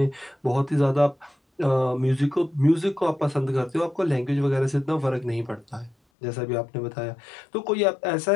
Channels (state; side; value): drops out; right; at 6.0 s